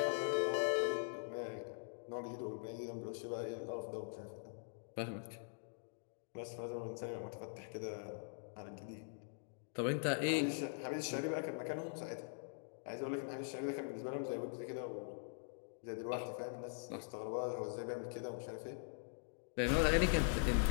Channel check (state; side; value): silent; right; digital silence